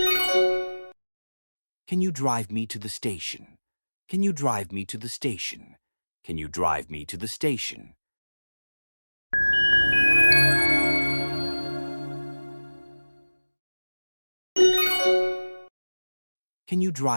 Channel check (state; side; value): inverted; both; correlation -1.00